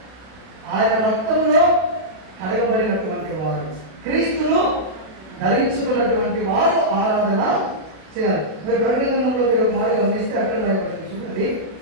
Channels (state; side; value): late; left; 32 ms